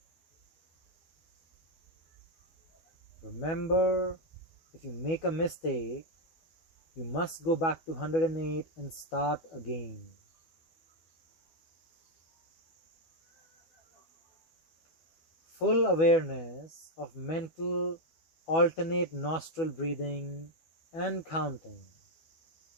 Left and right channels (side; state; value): right; late; 12 ms